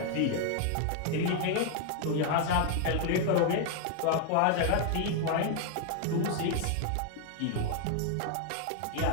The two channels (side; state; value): both; different; correlation 0.00